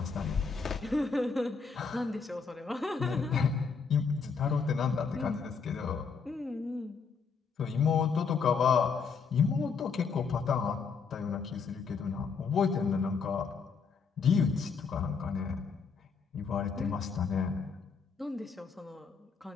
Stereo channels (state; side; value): quieter; right; 5.5 dB